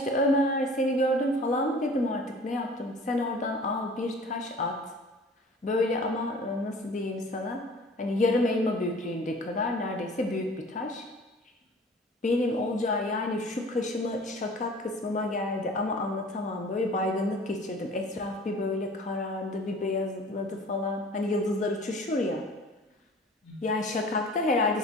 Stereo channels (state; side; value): normal; both; correlation 0.46